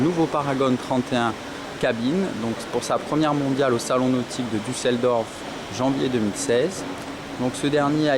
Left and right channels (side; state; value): both; identical; correlation 1.00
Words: Paragon 31 cabine, donc pour sa première mondiale au salon nautique de Düsseldorf janvier 2016. Donc ce dernier a